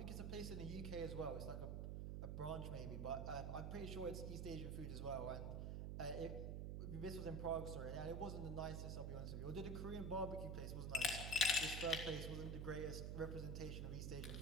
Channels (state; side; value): noise; right; hum, 1 dB below the sound